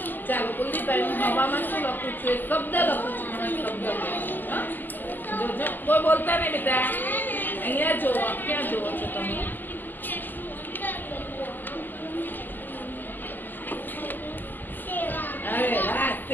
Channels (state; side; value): late; right; 0.090 ms